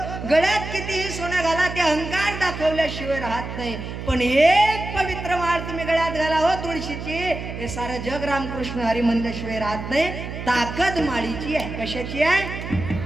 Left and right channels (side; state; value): right; noise; hum, 8 dB below the sound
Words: गळ्यात कितीही सोनं घाला, ते अहंकार दाखवल्याशिवाय राहत नाही. पण एक पवित्र माळ तुम्ही गळ्यात घाला हो तुळशीची, हे सारं जग रामकृष्ण हरी म्हणल्याशिवाय राहत नाही. ताकद माळीची आहे. कशाची आहे?